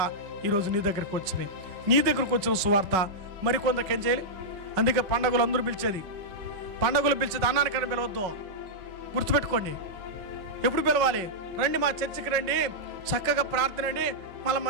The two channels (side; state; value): left; late; 5.2 ms